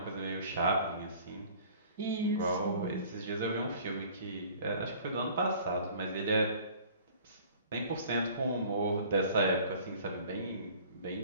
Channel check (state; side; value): inverted; both; correlation -0.50